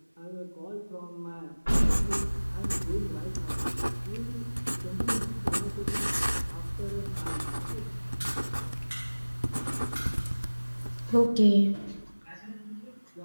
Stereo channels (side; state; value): both; inverted; correlation -1.00